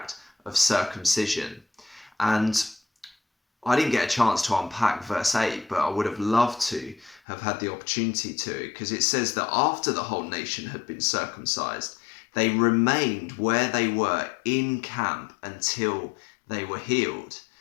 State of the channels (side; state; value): right; drops out; at 7.2 s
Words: of circumcision. And I didn't get a chance to unpack verse 8, but I would have loved to have had the opportunity to, because it says that after the whole nation had been circumcised, they remained where they were in camp until they were healed.